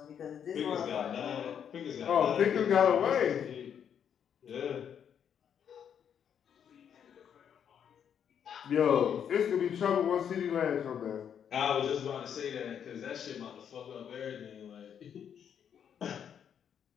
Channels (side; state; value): right; quieter; 8.4 dB